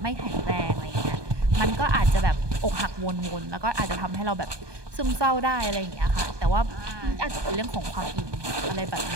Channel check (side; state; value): left; late; 1.2 ms